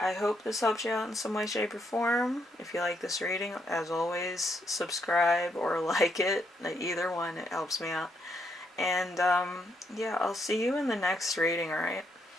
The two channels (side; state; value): both; normal; correlation 0.76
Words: hope this helps you out in some way, shape, or form. If you like this reading, as always, subscribe or like it. Either one, it helps me out. And yeah, I'll see you in the next reading, alright?